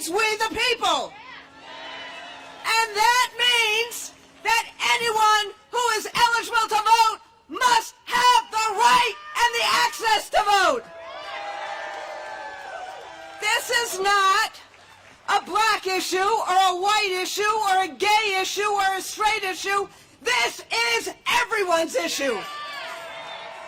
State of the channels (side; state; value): both; identical; correlation 1.00